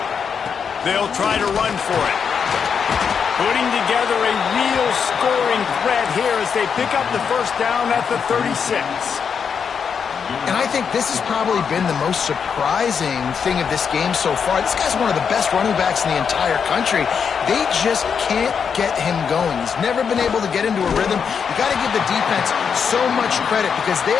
They'll try to run for it. Putting together a real scoring threat here as they pick up the first down at the 36. And I think this has probably been the most surprising thing of this game so far. This guy's one of the best running backs in the entire country. They just can't get him going. He's never been able to get into a rhythm. You got to give the defense so much credit because they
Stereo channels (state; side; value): quieter; right; 6.6 dB